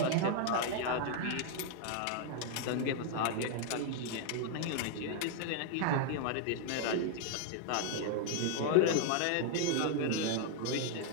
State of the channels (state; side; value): different; both; correlation 0.00